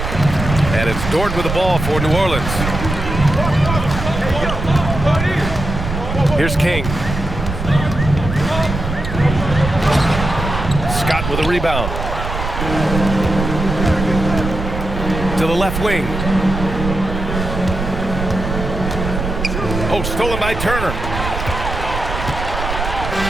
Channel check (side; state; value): right; noise; rumble, 5 dB below the sound